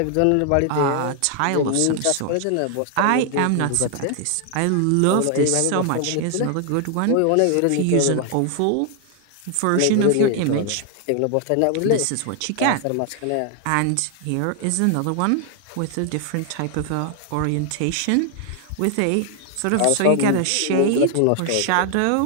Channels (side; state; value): both; different; correlation 0.00